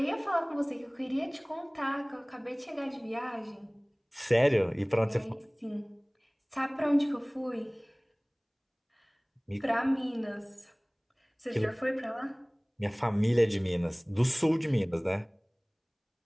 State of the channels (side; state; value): both; identical; correlation 1.00